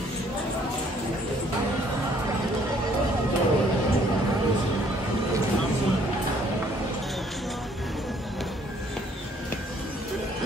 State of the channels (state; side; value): normal; both; correlation 0.62